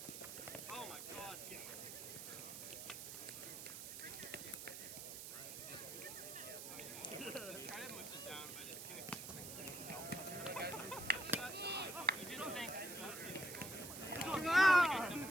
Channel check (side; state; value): right; noise; hiss, 8 dB below the sound